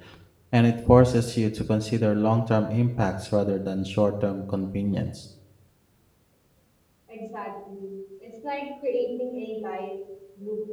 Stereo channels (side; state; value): both; identical; correlation 1.00